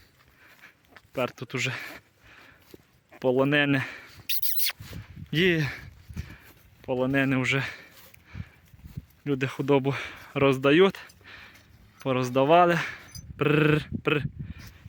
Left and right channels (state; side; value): identical; both; correlation 1.00